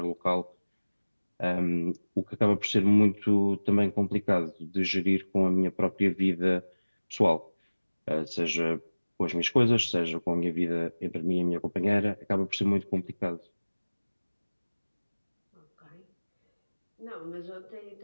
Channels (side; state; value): both; inverted; correlation -1.00